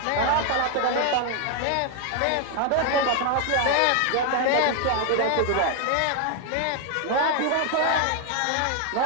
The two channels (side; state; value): both; different; correlation 0.00